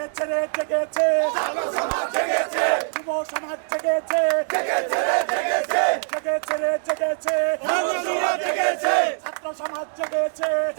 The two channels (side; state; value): left; silent; digital silence